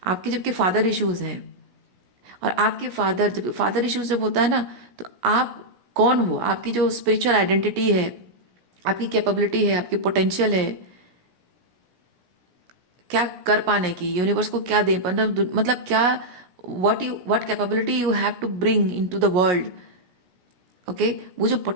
आपके जबकि फादर इश्यूज हैं, और आपके जब फादर इश्यूज जब होता है ना, तो आप कौन हो, आपकी जो स्पिरिचुअल आइडेंटिटी है, आपकी कैपेबिलिटी है, आपकी पोटेंशियल है क्या कर पाने की, यूनिवर्स को क्या दे, मतलब क्या, what capability you have to bring into the world. Okay, वो जो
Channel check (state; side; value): late; left; 17 ms